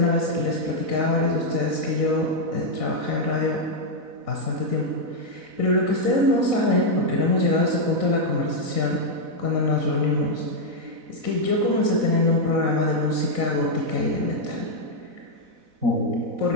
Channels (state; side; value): late; left; 4.0 ms